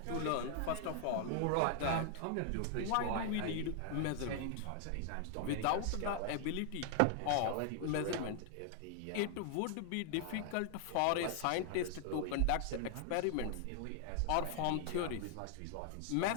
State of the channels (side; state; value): both; different; correlation 0.00